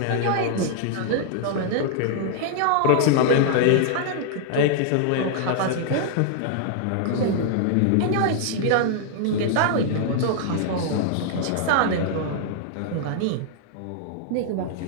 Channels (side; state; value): both; different; correlation -0.01